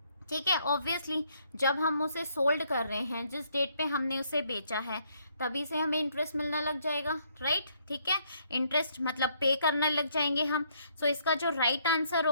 ठीक है, ऑब्वियसली जब हम उसे सोल्ड कर रहे हैं, जिस डेट पे हमने उसे बेचा है तभी से हमें इंटरेस्ट मिलना लग जाएगा, राइट। ठीक है, इंटरेस्ट मतलब पे करने लग जाएंगे हम। सो इसका जो राइट आंसर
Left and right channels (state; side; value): inverted; both; correlation -0.69